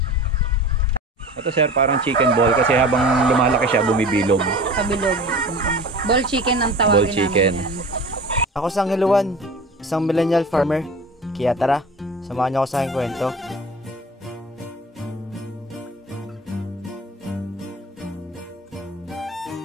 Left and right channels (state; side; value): normal; both; correlation 0.39